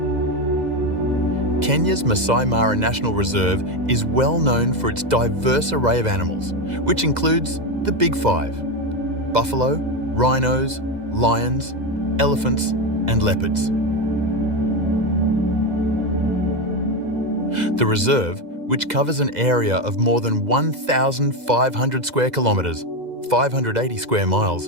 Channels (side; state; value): left; late; 2.0 ms